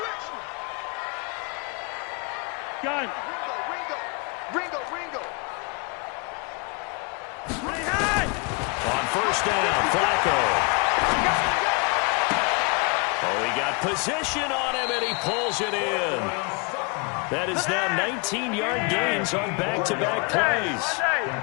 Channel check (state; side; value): quieter; right; 32.9 dB